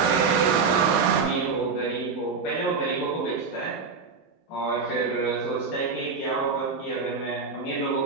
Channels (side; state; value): left; quieter; 5.0 dB